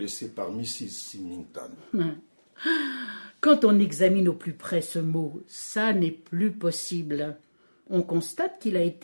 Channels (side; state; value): both; inverted; correlation -1.00